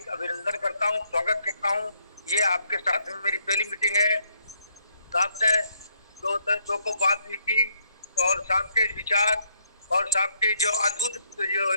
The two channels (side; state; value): both; inverted; correlation -0.72